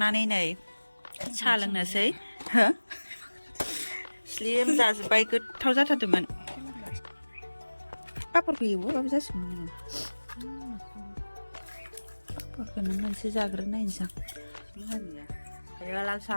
नै साहा लोंनोसै स्लिम जाजोब्बाय गोथाव जाथारदोंमोन पापरखौ एवोबाबो जासिगौमोन पापरखौनो मोनसे जाग्रोनायनोसै दायो लाल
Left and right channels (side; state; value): both; inverted; correlation -1.00